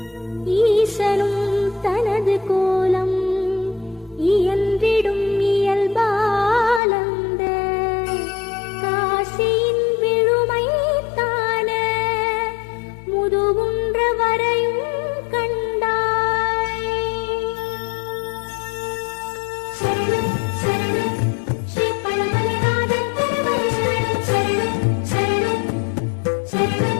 ஈசனும் தனது கோலம் இயன்றிடும் இயல்பாலந்த காசியின் விழுமை தான முதுகுன்ற வரையும் கண்டாய். சரணம் சரணம் ஸ்ரீ பழமலைநாதன் திருவடி சரணம் சரணம்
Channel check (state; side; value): drops out; right; at 6.8 s